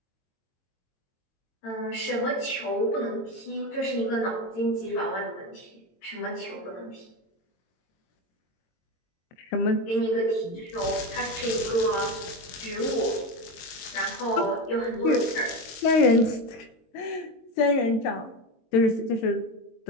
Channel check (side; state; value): right; late; 22 ms